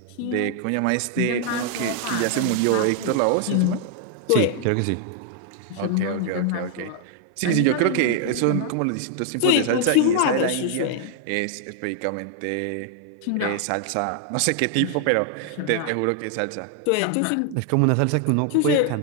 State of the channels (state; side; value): different; both; correlation 0.00